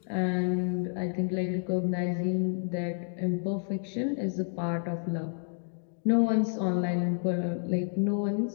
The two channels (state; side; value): silent; right; 58 dB below the other